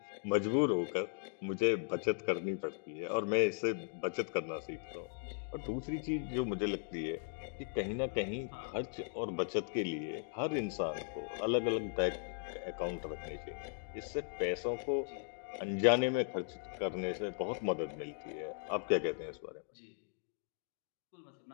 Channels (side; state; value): right; silent; digital silence